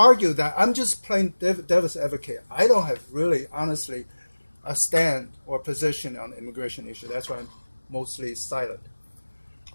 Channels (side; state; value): both; inverted; correlation -1.00